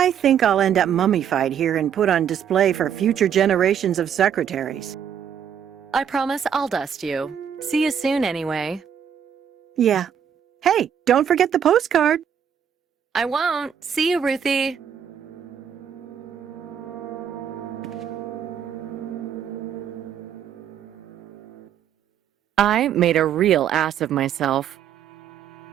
think I'll end up mummified here and put on display for future generations of secretaries. I promise I'll dust you. See you soon anyway. Yeah. Hey, don't forget the postcard. I won't. See you, Ruthie. I made a real ass of myself.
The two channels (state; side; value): quieter; left; 8.5 dB